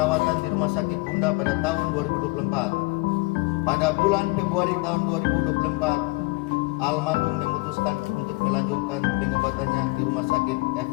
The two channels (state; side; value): quieter; right; 25.9 dB